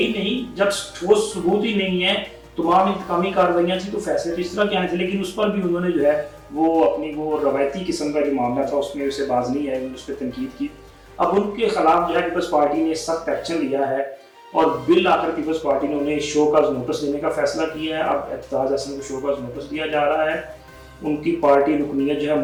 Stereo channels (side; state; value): both; identical; correlation 1.00